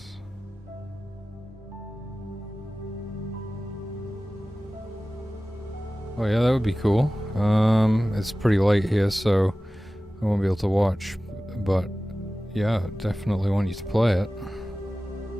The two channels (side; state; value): both; normal; correlation 0.96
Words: Oh yeah, that would be cool. It's pretty late here, so I won't be able to watch, but yeah, definitely want you to play it.